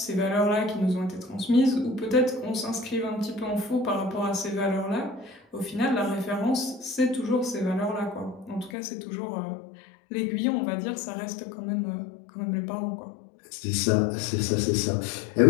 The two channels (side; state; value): right; drops out; at 8.8 s